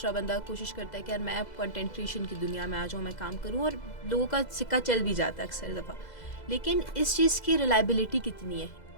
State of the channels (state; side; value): late; right; 2.0 ms